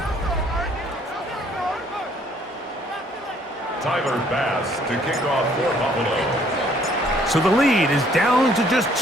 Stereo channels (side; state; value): both; normal; correlation 0.62